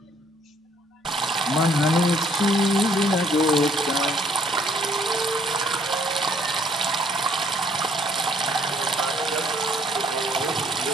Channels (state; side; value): normal; both; correlation 0.64